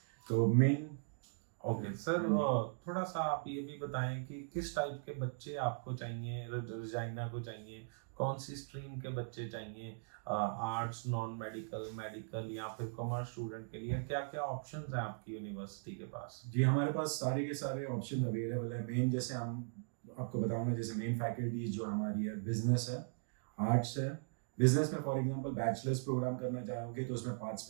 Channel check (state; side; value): silent; left; digital silence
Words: तो मेन ओके सर, थोड़ा सा आप ये भी बताएं कि किस टाइप के बच्चे आपको चाहिए, रजाइना को चाहिए, कौन सी स्ट्रीम के बच्चे चाहिए, आर्ट्स, नॉन मेडिकल, मेडिकल या फिर कॉमर्स स्टूडेंट के लिए क्या क्या ऑप्शंस हैं आपकी यूनिवर्सिटी के पास। जी, हमारे पास सारे के सारे ऑप्शन अवेलेबल है। मेन जैसे हम आपको बताऊंगा, जैसे मेन फैकल्टीज जो हमारी है, बिजनेस है, आर्ट्स है। बिजनेस में फॉर एग्जांपल बैचलर्स प्रोग्राम करना चाहोगे तो उसमें 5